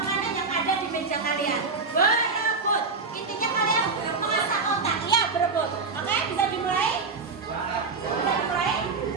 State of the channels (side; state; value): left; quieter; 4.4 dB